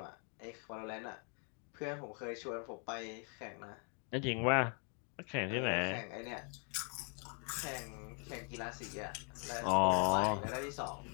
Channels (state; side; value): quieter; right; 39.6 dB